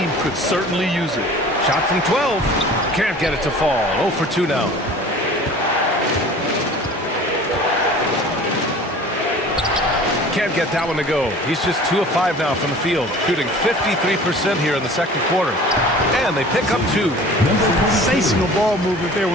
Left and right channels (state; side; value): normal; both; correlation 0.44